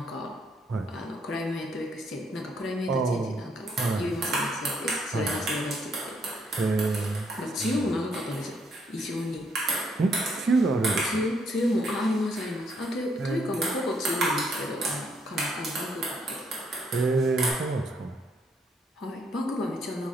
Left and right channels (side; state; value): both; normal; correlation 0.71